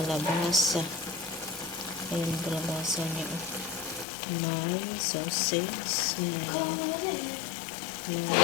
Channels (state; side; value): drops out; right; at 4.0 s